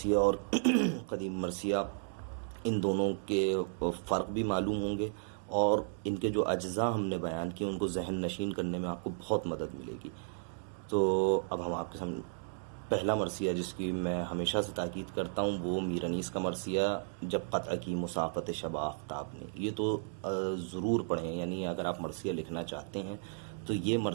اور قدیم مرثیہ ان دونوں کے فرق بھی معلوم ہوں گے، اور ان کے جو اجزاء ہم نے بیان کیے ان کو ذہن نشین کرنے میں آپ کو بہت مدد ملے گی۔ تو اب ہم آپ کے سامنے پہلا مرثیہ جس کی میں ہمیشہ سے تاکید کرتا ہوں وہ میر انیس کا مرثیہ جب قطع کی مسافت شب آفتاب نے، یہ تو ضرور پڑھیں، یعنی اگر آپ مرثیہ لکھنا چاہتے ہیں تو یہ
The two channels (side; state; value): left; silent; digital silence